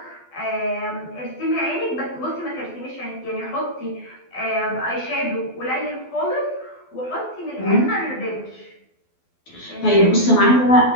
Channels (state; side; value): late; right; 12 ms